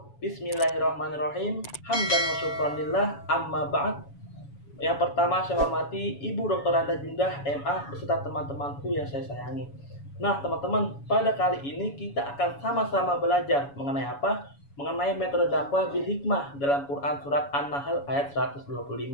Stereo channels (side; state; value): right; late; 7.1 ms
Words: Bismillahirrahmanirrahim. Hamdan wa syukran lillah, amma ba'd. Yang pertama saya hormati Ibu Dr. Anda Jundah MA beserta teman-temanku yang saya sayangi. Nah teman-teman, pada kali ini kita akan sama-sama belajar mengenai apa? Mengenai metode dakwah bil hikmah dalam Quran surat An-Nahl ayat 125.